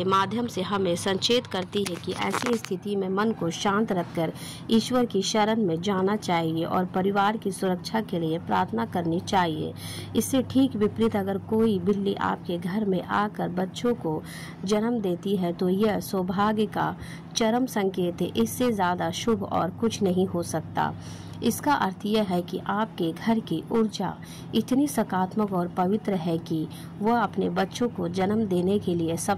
माध्यम से हमें संचेत करती है कि ऐसी स्थिति में मन को शांत रखकर ईश्वर की शरण में जाना चाहिए और परिवार की सुरक्षा के लिए प्रार्थना करनी चाहिए। इससे ठीक विपरीत अगर कोई बिल्ली आपके घर में आकर बच्चों को जन्म देती है तो यह सौभाग्य का चरम संकेत है। इससे ज़्यादा शुभ और कुछ नहीं हो सकता। इसका अर्थ यह है कि आपके घर की ऊर्जा इतनी सकारात्मक और पवित्र है कि वह अपने बच्चों को जन्म देने के लिए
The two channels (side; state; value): both; identical; correlation 1.00